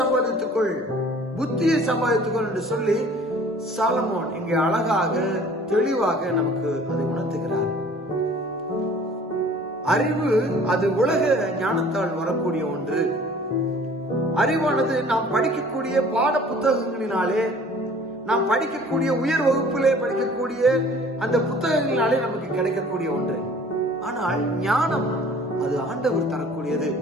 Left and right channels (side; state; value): both; normal; correlation 0.51